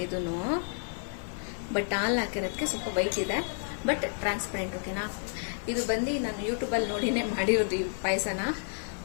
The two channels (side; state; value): right; silent; digital silence